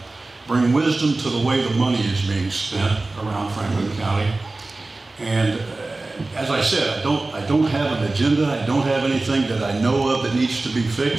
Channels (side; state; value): left; quieter; 3.2 dB